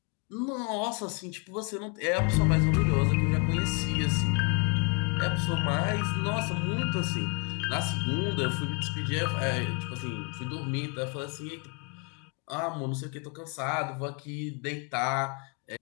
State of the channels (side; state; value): right; quieter; 33.2 dB